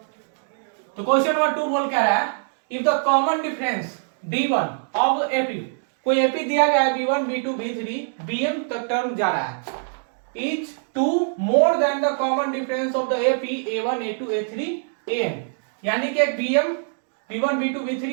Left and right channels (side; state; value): left; silent; digital silence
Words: तो क्वेश्चन नंबर 2 बोल क्या रहा है, if the common difference D1 of AP, कोई एपी दिया गया है B1 B2 B3 BM तक टर्म जा रहा है, is 2 more than the common difference of the AP A1 A2 A3 AN, यानी कि एक BM B1 B2 B3